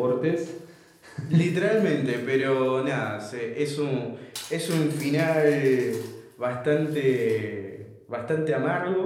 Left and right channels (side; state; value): both; identical; correlation 1.00